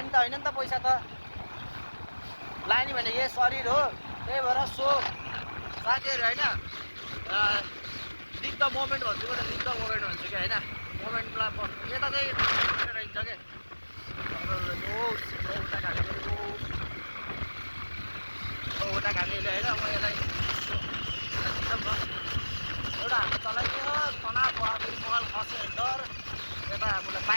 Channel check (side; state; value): both; inverted; correlation -1.00